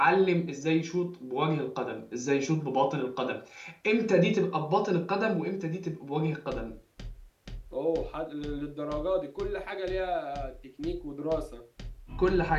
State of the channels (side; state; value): both; identical; correlation 1.00